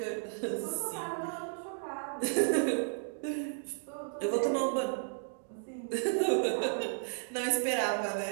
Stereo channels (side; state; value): left; silent; digital silence